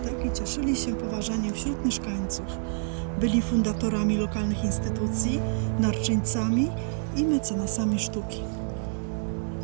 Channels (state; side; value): silent; left; digital silence